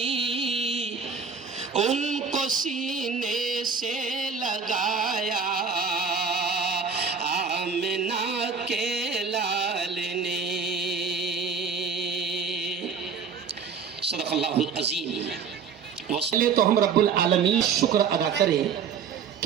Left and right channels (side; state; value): left; quieter; 5.8 dB